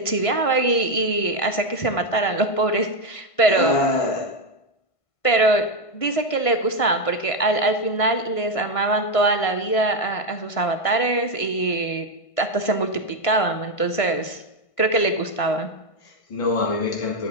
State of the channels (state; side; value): late; right; 1.5 ms